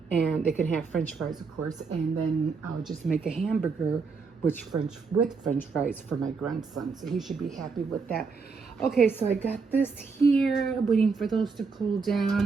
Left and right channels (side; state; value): left; quieter; 4.9 dB